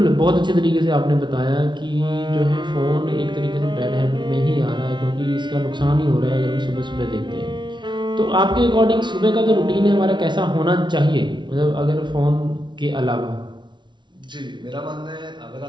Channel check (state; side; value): late; left; 0.23 ms